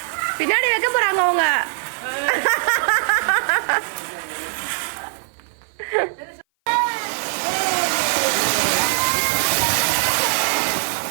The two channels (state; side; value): silent; left; 57 dB below the other